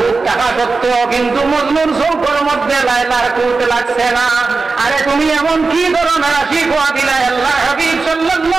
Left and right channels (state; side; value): quieter; left; 4.1 dB